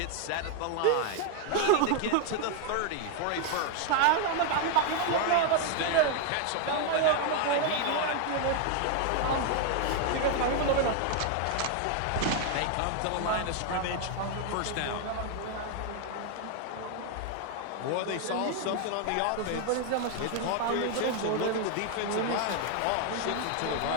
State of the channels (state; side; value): different; both; correlation 0.00